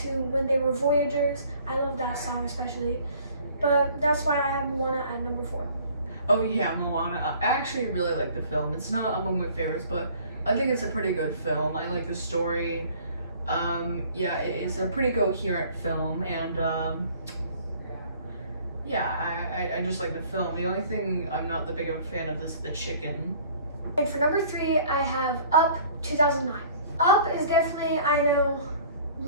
to when they were Voyagers. I love that song especially. But that's why I have Moana at number 4. Oh yeah, Moana. I actually really like the film. It's not among my favorites, but I think it's a pretty good film. I like the story. Yeah, it is a pretty coherent film, and I just like the film. The only thing I'm not the big of a fan of is the chicken. And for number 3, I have Up 2009. Up is definitely, I know,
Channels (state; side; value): inverted; both; correlation -0.53